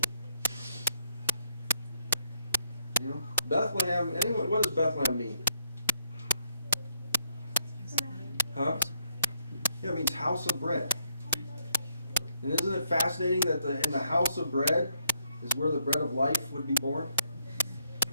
You know, Bethlehem, anyway, what does Bethlehem mean? Huh? Yeah, it means house of bread. And isn't it fascinating that in the house of bread is where the bread of life would be born?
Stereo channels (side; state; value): both; inverted; correlation -0.75